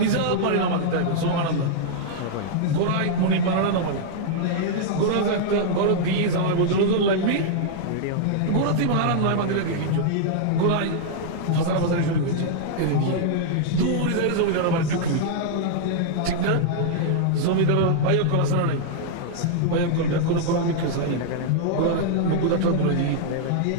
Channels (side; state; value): both; different; correlation -0.01